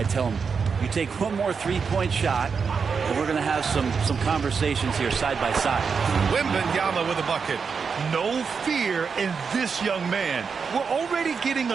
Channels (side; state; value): left; quieter; 5.7 dB